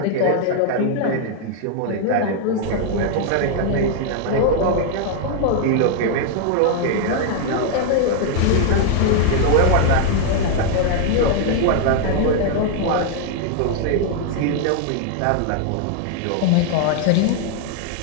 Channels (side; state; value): both; different; correlation 0.00